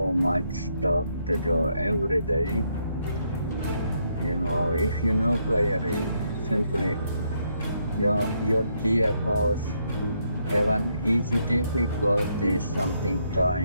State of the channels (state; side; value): inverted; both; correlation -0.75